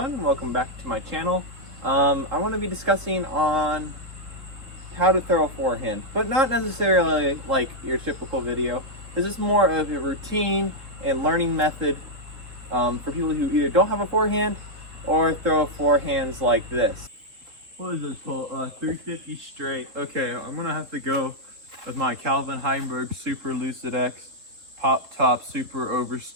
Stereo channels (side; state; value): left; late; 3.4 ms